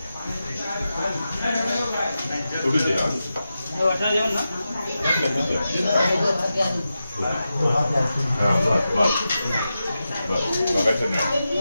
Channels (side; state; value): both; inverted; correlation -0.91